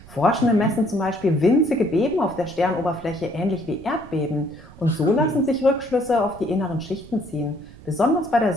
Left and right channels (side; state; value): right; noise; rumble, 19 dB below the sound